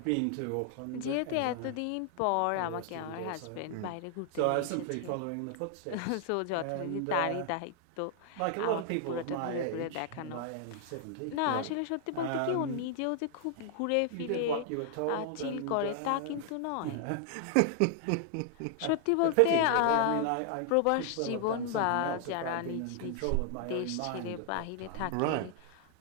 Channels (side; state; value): both; different; correlation 0.00